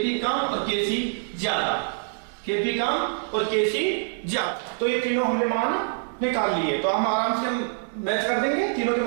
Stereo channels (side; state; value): left; silent; digital silence